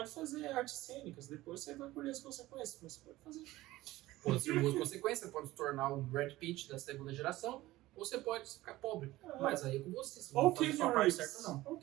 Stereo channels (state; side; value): quieter; left; 17.4 dB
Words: fazer artes cênicas, depois você vai colher as consequências, mas você pode fazer. Pode ser boas consequências, pode se tornar um Brad Pitt da segunda geração, ou você pode ficar pobre. Mas aí é com você, você Ou não faz a sua parte certa, não. Ou